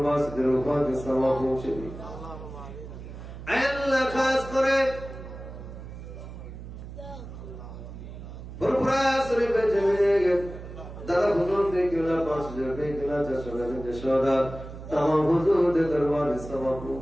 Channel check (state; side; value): noise; right; hum, 12 dB below the sound